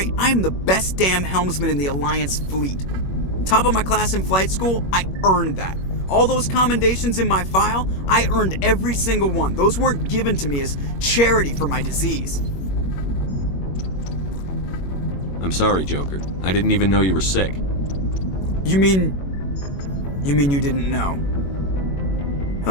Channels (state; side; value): late; right; 21 ms